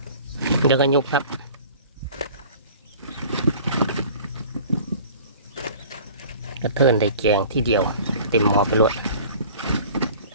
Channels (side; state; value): both; inverted; correlation -0.46